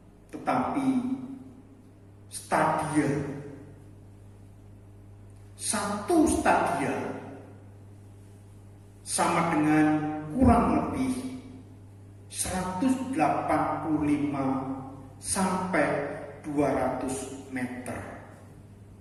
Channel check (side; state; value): both; identical; correlation 1.00